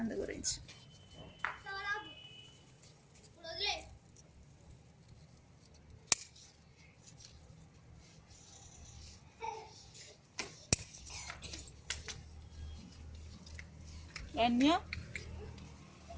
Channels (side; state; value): both; identical; correlation 1.00